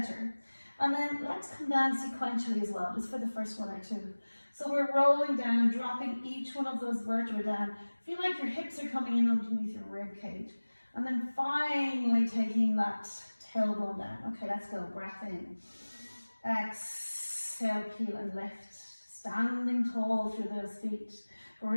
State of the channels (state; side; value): inverted; both; correlation -1.00